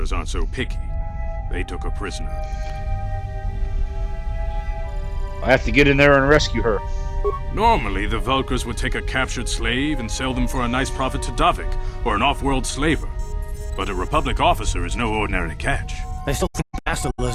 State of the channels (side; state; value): both; identical; correlation 1.00